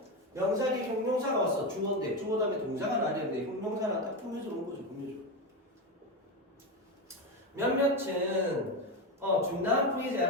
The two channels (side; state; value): both; normal; correlation 0.14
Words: 명사 뒤에 형용사가 왔어. 주어인데 주어 다음에 동사가 나왔는데 형용사는 딱 꾸며져 놓은 거죠. 꾸며줘. 몇몇은 중단